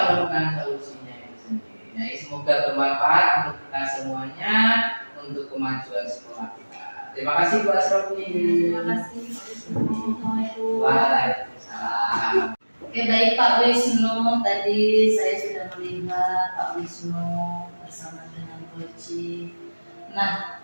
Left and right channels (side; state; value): both; inverted; correlation -1.00